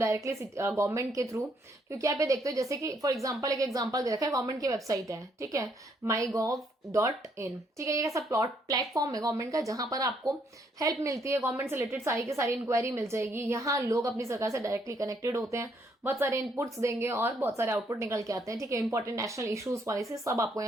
गवर्नमेंट के थ्रू। क्योंकि आप ये देखते हो, जैसे कि फॉर एग्जाम्पल एक एग्जाम्पल दे रखा है, गवर्नमेंट की वेबसाइट है, ठीक है, mygov.in, ठीक है, ये ऐसा प्लेटफॉर्म है गवर्नमेंट का जहां पर आपको हेल्प मिलती है, गवर्नमेंट से रिलेटेड सारी की सारी इंक्वायरी मिल जाएगी। यहाँ लोग अपनी सरकार से डायरेक्टली कनेक्टेड होते हैं, बहुत सारे इनपुट्स देंगे और बहुत सारे आउटपुट निकल के आते हैं, ठीक है। इंपॉर्टेंट नेशनल इश्यूज पॉलिसी सब आपको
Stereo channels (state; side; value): normal; both; correlation 0.70